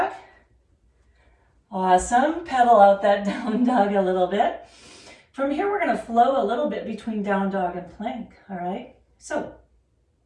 Awesome. Pedal out that down dog a little bit. From here, we're going to flow a little bit between down dog and plank. All right. So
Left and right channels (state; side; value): identical; both; correlation 1.00